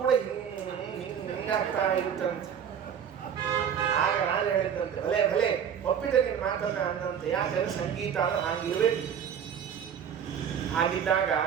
ಹಿಂಗಾಗ್ತಾ ಇರುತ್ತಂತೆ. ಆಗ ನಾನು ಹೇಳಿದ್ದಂತೆ, ಭಲೆ ಒಪ್ಪಿದೆ ನಿನ್ ಮಾತನ್ನ ಅಂದಂತೆ. ಯಾಕಂದ್ರೆ ಸಂಗೀತ ಅಂದ್ರೆ ಹಾಗಿರ್ಬೇಕು. ಹಾಗಿದ್ದಾಗ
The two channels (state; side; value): quieter; left; 8.2 dB